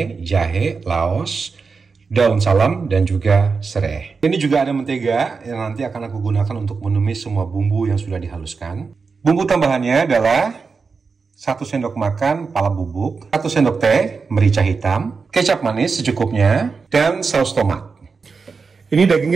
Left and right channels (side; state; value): left; quieter; 4.8 dB